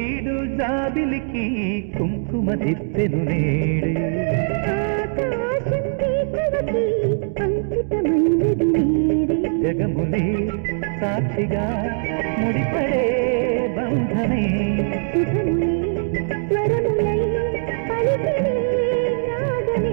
జాబిలికి కుంకుమ దిద్దెను నేడే జగములే సాక్షిగా ముడిపడే బంధమే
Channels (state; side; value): silent; left; digital silence